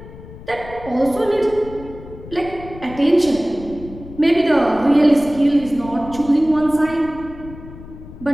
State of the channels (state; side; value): noise; left; rumble, 16 dB below the sound